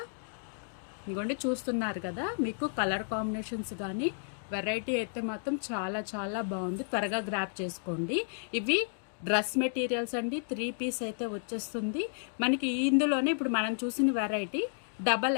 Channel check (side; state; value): right; silent; digital silence